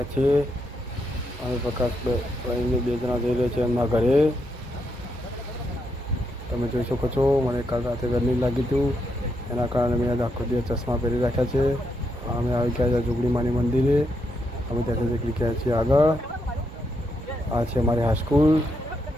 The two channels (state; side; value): normal; both; correlation 0.80